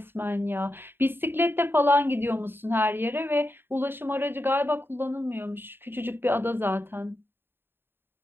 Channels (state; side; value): late; left; 0.10 ms